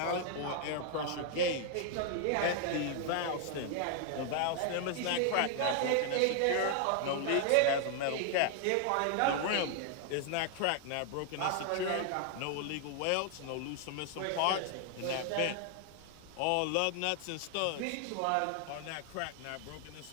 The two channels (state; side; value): different; both; correlation 0.00